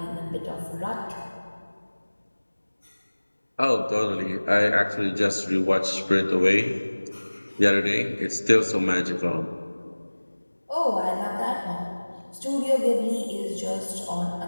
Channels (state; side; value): inverted; both; correlation -1.00